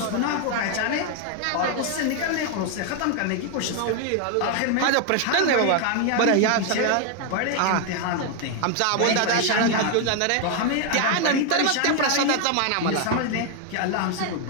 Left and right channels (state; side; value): different; both; correlation 0.00